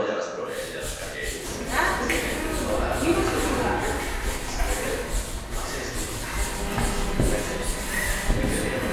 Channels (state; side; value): identical; both; correlation 1.00